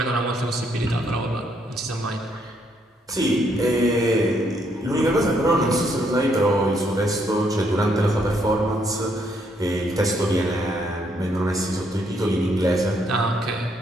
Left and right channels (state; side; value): normal; both; correlation 0.72